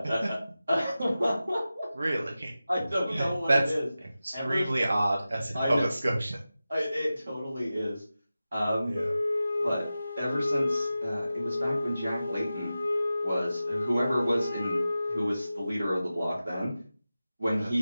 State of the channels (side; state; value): both; inverted; correlation -0.94